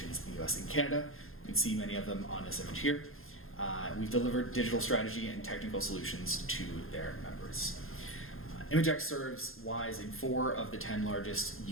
in the US and Canada. You can see many of them on this image here. We've delivered digital strategy and technical solutions to their members. ImageX serves Ys in 4 of the 10 largest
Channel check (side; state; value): right; late; 0.60 ms